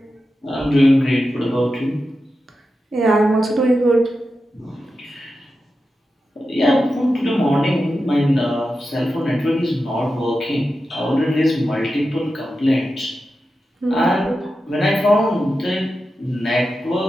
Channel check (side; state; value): both; normal; correlation 0.91